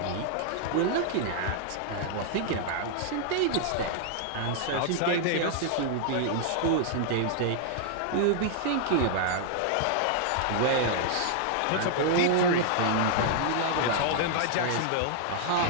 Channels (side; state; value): both; different; correlation 0.00